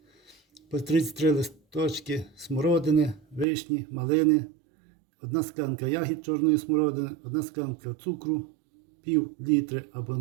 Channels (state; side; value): drops out; left; at 3.5 s